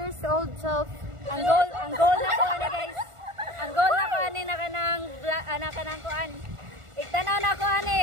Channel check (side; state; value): left; late; 1.4 ms